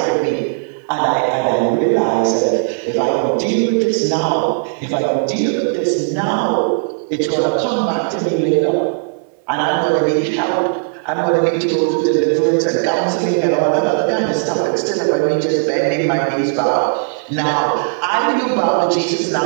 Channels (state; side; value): silent; left; digital silence